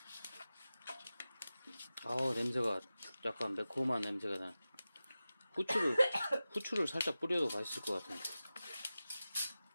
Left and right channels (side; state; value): both; inverted; correlation -0.95